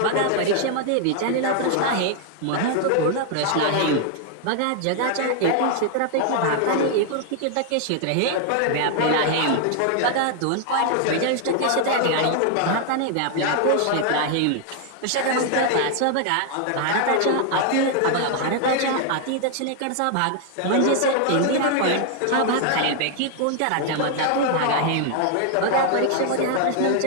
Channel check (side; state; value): both; different; correlation 0.00